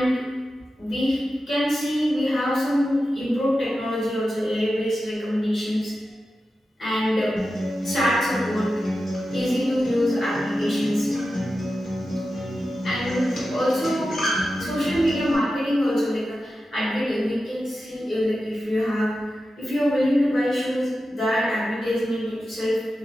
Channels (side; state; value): both; normal; correlation 0.92